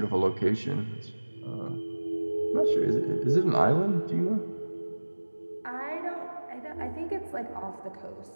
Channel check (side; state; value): both; inverted; correlation -1.00